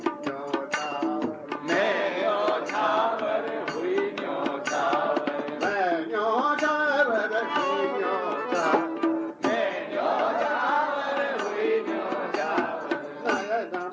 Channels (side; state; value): both; identical; correlation 1.00